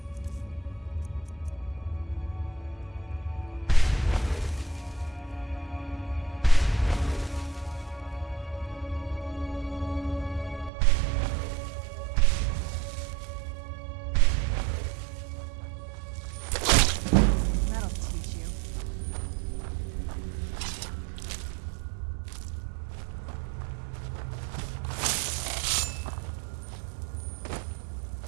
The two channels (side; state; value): left; drops out; at 10.7 s